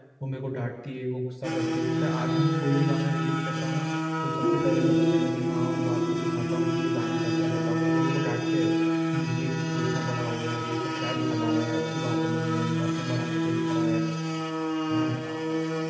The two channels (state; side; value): identical; both; correlation 1.00